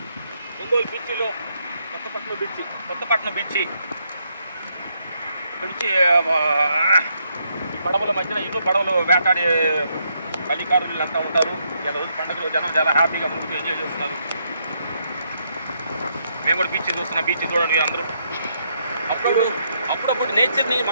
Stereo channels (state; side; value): inverted; both; correlation -0.76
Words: Ongole బీచ్లో Kothapatnam beach ఇక్కడ నుంచి పడవల మధ్యన ఎన్నో పడవలు వేటాడే కలికారులు అంతా ఉంటారు. ఇలా రోజు పండుగలో జనం చాలా హ్యాపీగా ముందుకు ఎంజాయ్ చేస్తున్నారు. మేము కూడా బీచ్ చూస్తున్నాం. బీచ్ చూడండి అందరూ. అప్పుడప్పుడు నేచర్ని